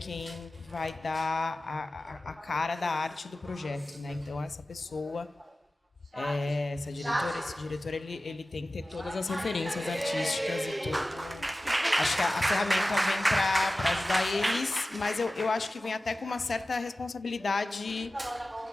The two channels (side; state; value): both; normal; correlation 0.96